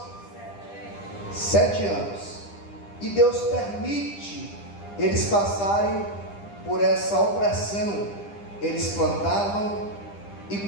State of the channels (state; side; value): late; right; 10 ms